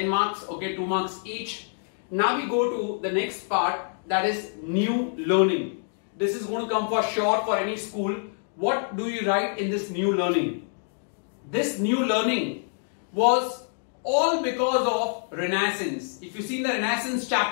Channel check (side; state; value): right; silent; digital silence